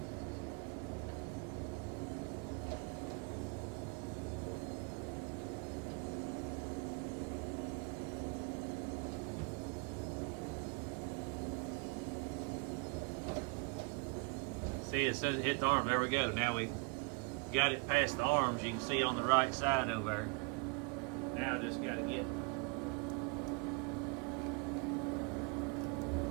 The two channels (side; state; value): left; quieter; 31.3 dB